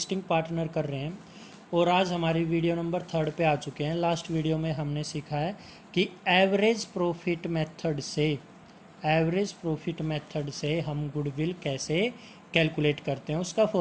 partner कर रहे हैं और आज हमारी वीडियो नंबर 3 पे आ चुके हैं। लास्ट वीडियो में हमने सीखा है कि एवरेज प्रॉफिट मेथड से हम गुडविल कैसे कैलकुलेट करते हैं। उसका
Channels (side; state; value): both; identical; correlation 1.00